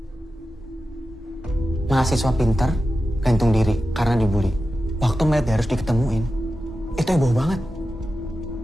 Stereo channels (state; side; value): normal; both; correlation 0.92